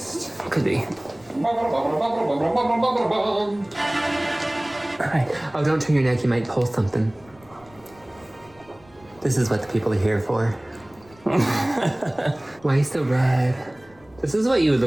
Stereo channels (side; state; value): left; noise; rumble, 27 dB below the sound